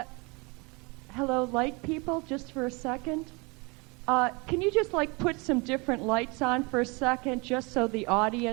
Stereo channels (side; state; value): left; quieter; 28.4 dB